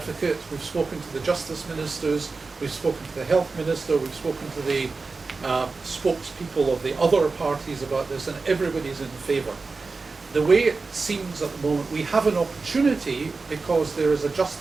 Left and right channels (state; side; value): quieter; left; 4.1 dB